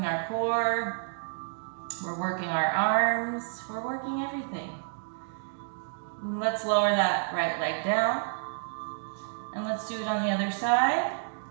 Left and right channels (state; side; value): silent; left; digital silence